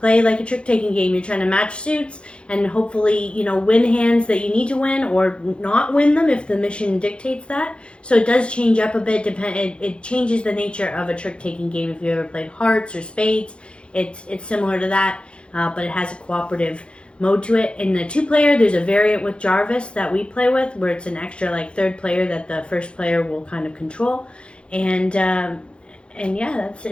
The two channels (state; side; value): late; right; 0.057 ms